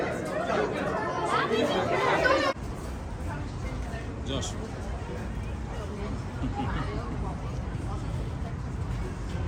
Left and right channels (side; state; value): both; identical; correlation 1.00